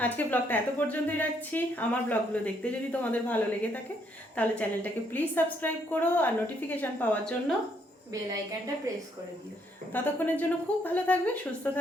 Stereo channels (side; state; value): both; normal; correlation 0.71